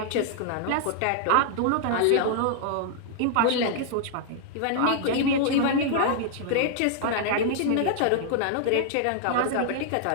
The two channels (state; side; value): different; both; correlation -0.01